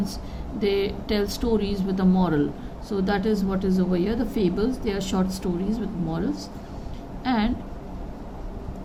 they tell stories with a moral. So that is what is over here. The fables, they are short stories with morals. And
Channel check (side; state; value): both; identical; correlation 1.00